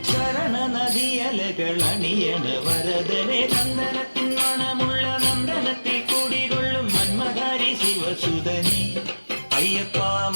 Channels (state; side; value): inverted; both; correlation -1.00